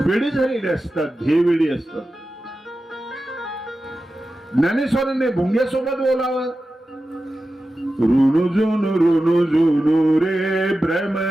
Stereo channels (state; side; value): normal; both; correlation 0.93